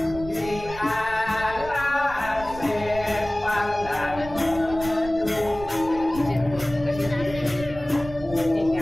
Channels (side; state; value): right; noise; rumble, 14 dB below the sound